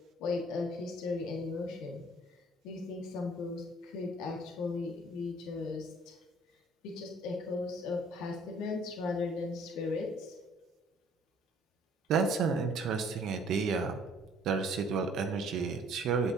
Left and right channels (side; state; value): both; normal; correlation 0.57